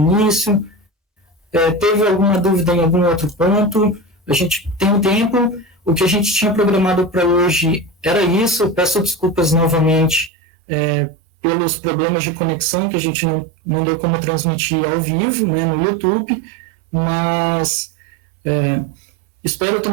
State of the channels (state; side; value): drops out; left; at 10.3 s